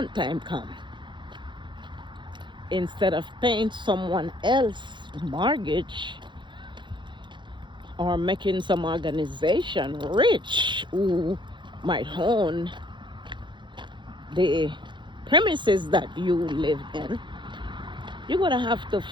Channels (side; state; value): left; late; 0.23 ms